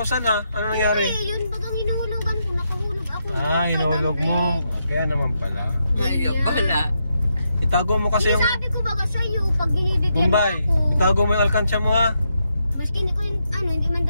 ha. Ano nangyari? Eh, yun bagang hinuhulugan ko, nakahulog ako. Hinulog mo. Kaya naman pala. Ayaw pala. Itago mo kasi yung... Sabi ko baga sa'yo, pag binibigyan Bombay, ako. itago mo yung alkansya mo ha. Maski hindi ko yung, hindi man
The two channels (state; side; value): inverted; both; correlation -0.82